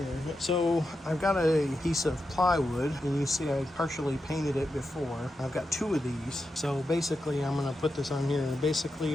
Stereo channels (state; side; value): normal; both; correlation 0.88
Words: So I've got a piece of plywood, and you see I partially painted it before. I've got two of these. So basically I'm going to put this on here, and basically